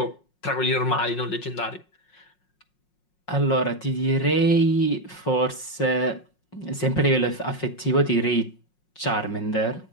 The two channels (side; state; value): right; late; 5.5 ms